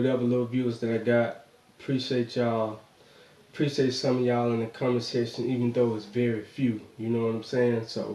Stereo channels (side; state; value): both; identical; correlation 1.00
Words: little viewers that I got. Appreciate y'all. Appreciate some of y'all in the comment section, even though it's very few. You know what I'm saying?